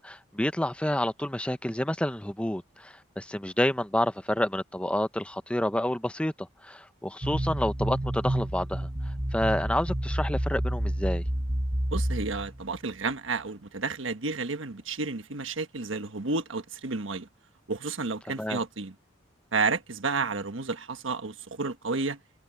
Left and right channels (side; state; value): both; normal; correlation 0.70